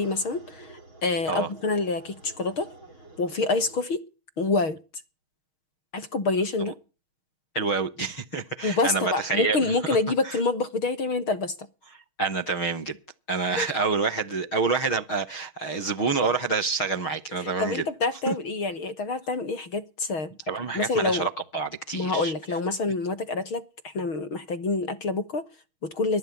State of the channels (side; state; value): right; late; 6.4 ms